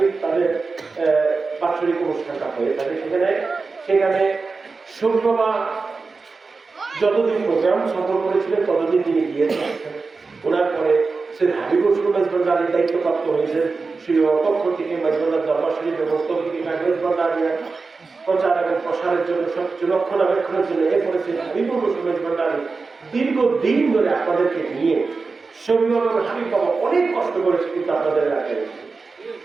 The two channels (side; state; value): left; quieter; 4.2 dB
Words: তাদের বাৎসরিক অনুষ্ঠানটা হয়ে থাকে সেখানে শরীফ বাবা যতদিন প্রোগ্রাম সফল করেছিলেন ততদিন তিনি গিয়েছেন ওনার পরে সৈয়দ হাবিবুর রহমান ভান্ডারীর দায়িত্বপ্রাপ্ত হয়েছেন সেই পক্ষ থেকে মাইজবান্ডার দরবার শরীফ এবং তৌহিদি কাগজ ভান্ডারীর প্রচার এবং প্রসারের জন্য সবকিছু রক্ষণাবেক্ষণের জন্য এরপরে সৈয়দ হাবিবুর রহমান ভান্ডারী দীর্ঘদিন ধরে আপনাদেরকে নিয়ে শরীফ এবং হাবিব বাবা অনেক কষ্ট করেছে কিন্তু আপনাদের এলাকায়